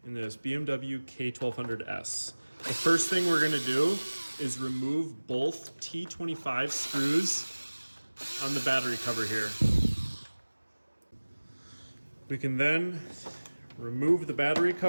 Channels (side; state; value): both; inverted; correlation -1.00